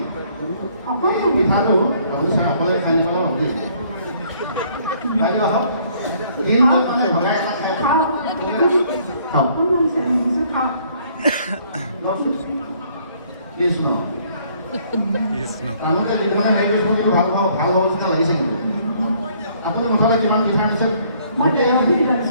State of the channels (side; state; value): both; inverted; correlation -0.63